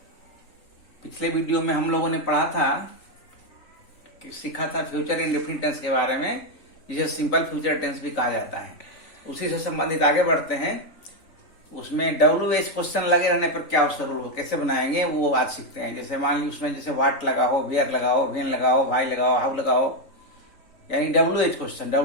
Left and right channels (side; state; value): right; late; 3.5 ms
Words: पिछले वीडियो में हम लोगों ने पढ़ा था कि सीखा था फ्यूचर इंडेफिनिट टेंस के बारे में, जिसे सिंपल फ्यूचर टेंस भी कहा जाता है। उसी से संबंधित आगे बढ़ते हैं। उसमें WH क्वेश्चन लगे रहने पर क्या उसका रूल कैसे बनाएंगे वो आज सीखते हैं। जैसे मान ली उसमें जैसे वाट लगाओ, वेयर लगाओ, वेन लगाओ, भाई लगाओ, हाउ लगाओ, यानी WH